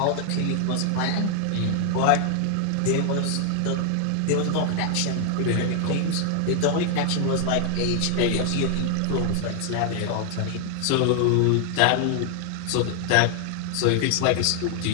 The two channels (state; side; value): different; both; correlation 0.00